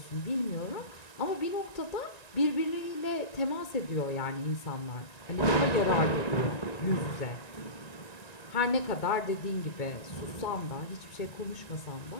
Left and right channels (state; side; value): late; right; 1.9 ms